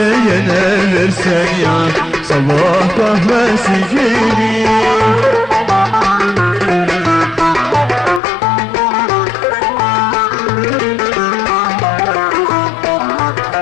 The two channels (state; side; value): drops out; right; at 8.2 s